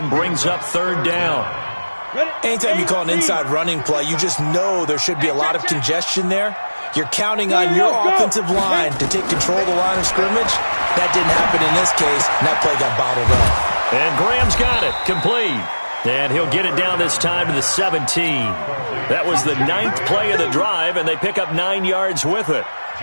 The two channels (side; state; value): both; inverted; correlation -1.00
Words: brings up 3rd down. Anytime you call an inside running play, you just know there should be a lot of congestion there. You're counting on your offensive line to take control of the line of scrimmage. That didn't happen in this case, and that play got bottled up. And Graham's got it, complete. And he'll get it down this time to the 17. That was the 9th play of the drive, and they pick up 9 yards with it.